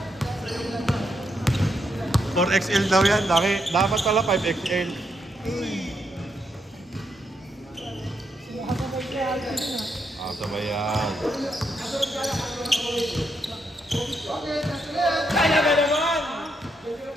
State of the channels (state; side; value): normal; both; correlation 0.79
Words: 4XL daw yan. Dapat pala 5XL. Ah, sabay yan. Kaya ba naman?